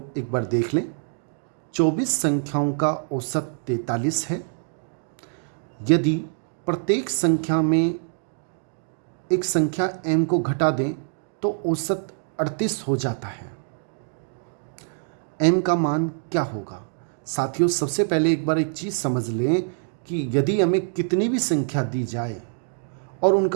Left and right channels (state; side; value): silent; left; digital silence